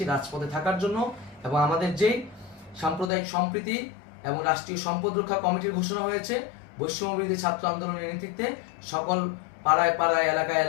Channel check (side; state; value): right; drops out; at 3.1 s